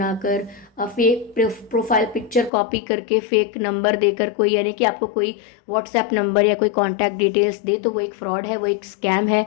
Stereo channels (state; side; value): drops out; right; at 2.5 s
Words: फेक प्रोफाइल पिक्चर कॉपी करके, फेक नंबर देकर कोई, यानी कि आपको कोई व्हाट्सएप नंबर या कोई कॉन्टैक्ट डिटेल्स दे, तो वो एक फ्रॉड है, वो एक स्कैम है।